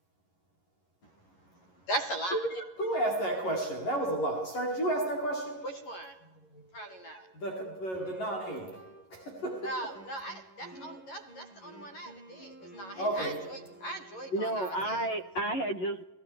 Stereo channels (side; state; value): right; late; 11 ms